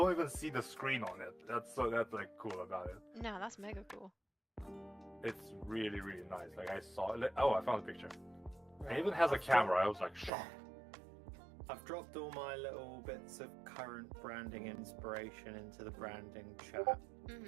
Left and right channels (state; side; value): drops out; left; at 10.3 s